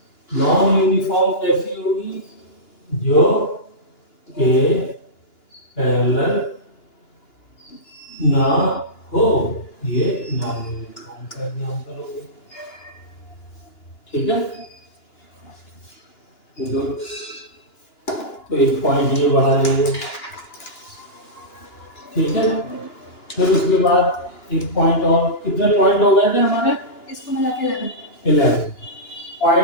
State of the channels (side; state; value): right; late; 2.9 ms